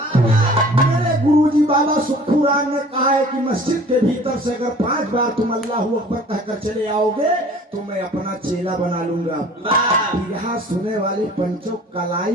मेरे गुरुजी बाबा सुखू राम ने कहा है कि मस्जिद के भीतर से अगर 5 बार तुम अल्लाहू अकबर कहकर चले आओगे तो मैं अपना चेला बना लूंगा। यहाँ सुने वाले पंचों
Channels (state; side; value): normal; both; correlation 0.48